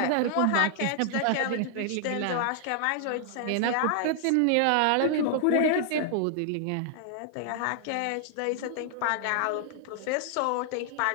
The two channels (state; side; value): different; both; correlation 0.00